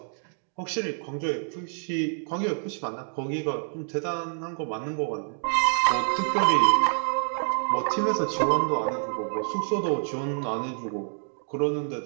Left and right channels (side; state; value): left; silent; 59 dB below the other